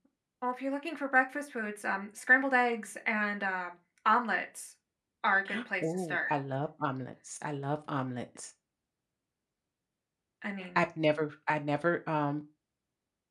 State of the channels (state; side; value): identical; both; correlation 1.00